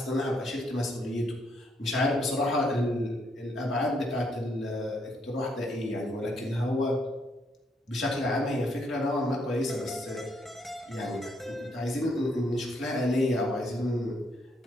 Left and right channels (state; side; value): normal; both; correlation 0.73